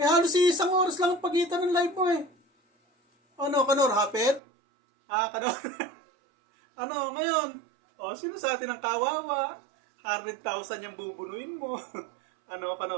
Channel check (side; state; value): left; drops out; at 4.4 s